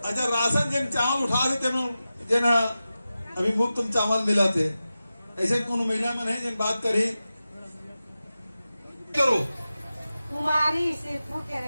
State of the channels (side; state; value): both; inverted; correlation -0.93